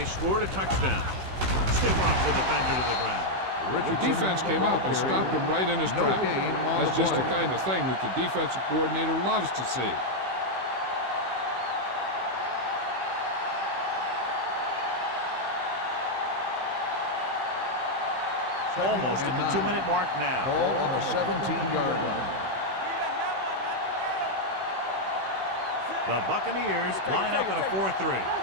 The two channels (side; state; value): left; late; 16 ms